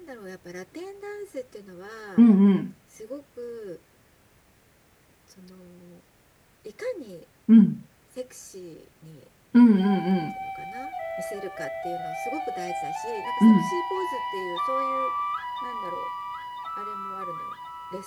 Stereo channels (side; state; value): both; identical; correlation 1.00